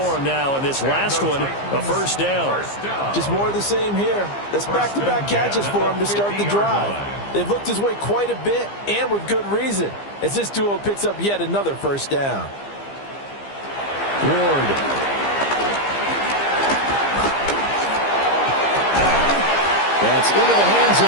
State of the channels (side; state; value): right; late; 15 ms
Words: him now, and this last one, a first down. Just more of the same here. That's back-to-back catches for him to start the drive. They've looked his way quite a bit, and with good reason, as this duo picks up yet another first down. Ward. That's into the hands of